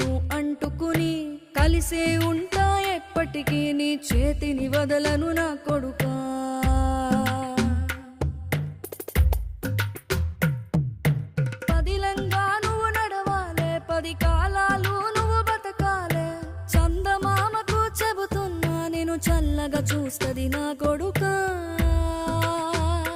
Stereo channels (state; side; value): identical; both; correlation 1.00